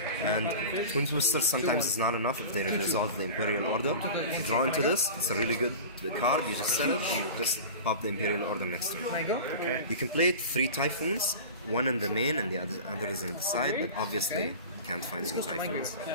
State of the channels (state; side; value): inverted; both; correlation -0.34